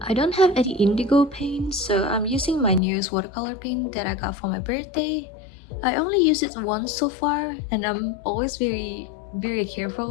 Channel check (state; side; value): drops out; right; at 2.8 s